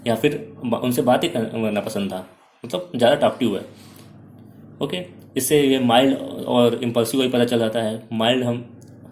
या फिर उनसे बातें करना पसंद था, मतलब ज़्यादा टॉकटिव है। ओके, इससे ये माइल्ड और इम्पल्सिव का ही पता चल जाता है।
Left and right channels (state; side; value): identical; both; correlation 1.00